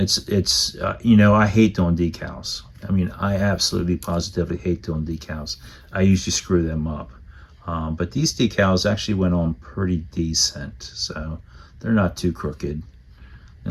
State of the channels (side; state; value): both; identical; correlation 1.00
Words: you know, I hate doing decals. I mean, I absolutely positively hate doing decals. I usually screw them up. But these decals actually went on pretty decent, so they're not too crooked. They